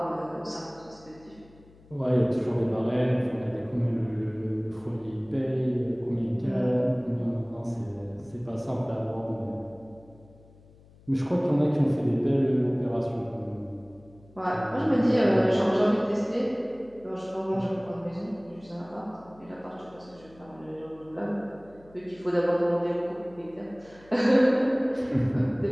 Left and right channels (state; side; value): noise; left; hum, 25 dB below the sound